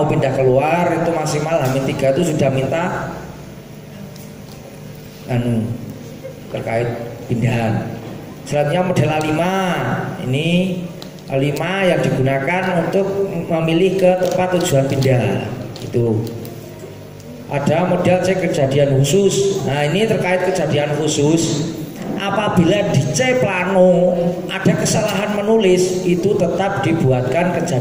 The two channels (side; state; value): both; identical; correlation 1.00